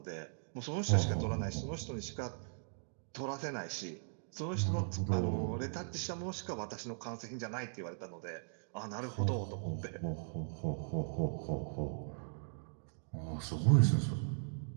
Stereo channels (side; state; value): left; silent; digital silence